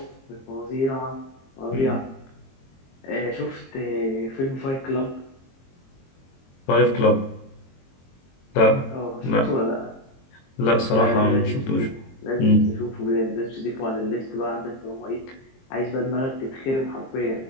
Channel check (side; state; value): right; late; 22 ms